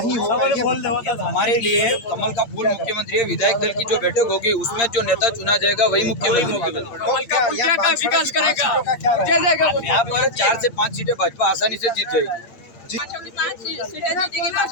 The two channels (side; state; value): right; late; 8.7 ms